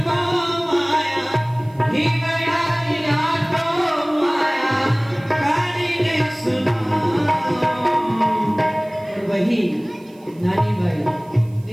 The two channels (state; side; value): noise; right; hiss, 30 dB below the sound